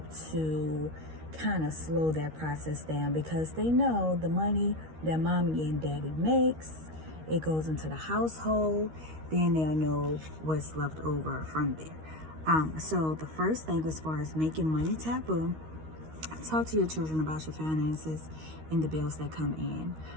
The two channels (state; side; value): late; left; 13 ms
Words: to kind of slow that process down, because they know the money that mommy and daddy makes, it goes into the household, then they'll know what's left over from there. So the first thing as far as making money taboo, talk to your children about your finances and the bills that come in.